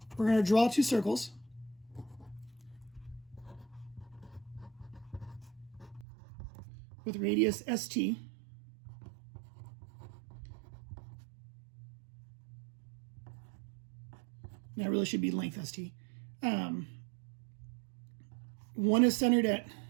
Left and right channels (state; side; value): drops out; left; at 6.1 s